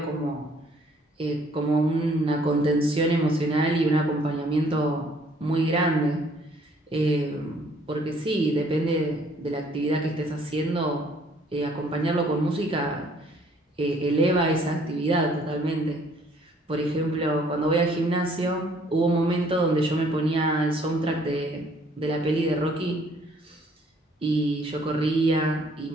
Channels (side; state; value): both; normal; correlation 0.61